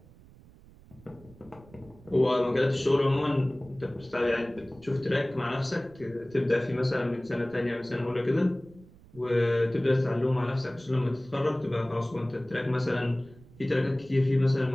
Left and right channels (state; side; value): noise; right; rumble, 23 dB below the sound